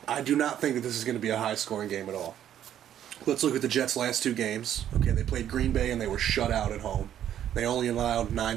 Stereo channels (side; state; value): left; quieter; 10.6 dB